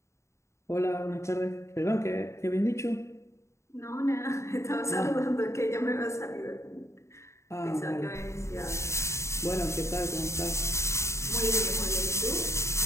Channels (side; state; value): right; late; 0.14 ms